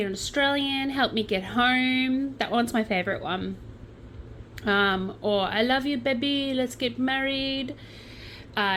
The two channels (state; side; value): identical; both; correlation 1.00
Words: an Australian. Help me get home. That one's my favorite one. Or I love you, baby. Let's get married.